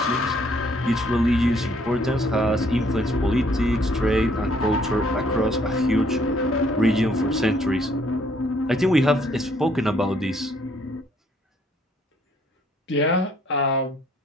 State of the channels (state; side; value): normal; both; correlation 0.65